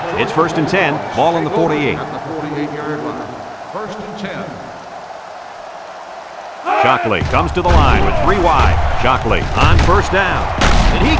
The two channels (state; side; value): identical; both; correlation 1.00